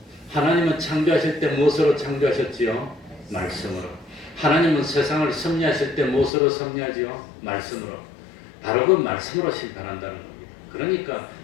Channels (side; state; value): right; drops out; at 6.3 s